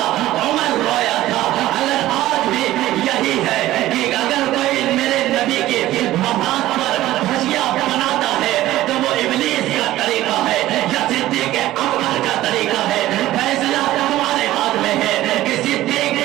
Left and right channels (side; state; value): left; quieter; 15.2 dB